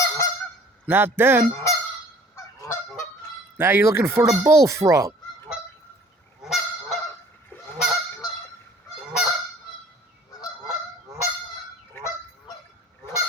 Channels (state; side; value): normal; both; correlation 0.52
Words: Not them. Now you're looking for the bullfrog.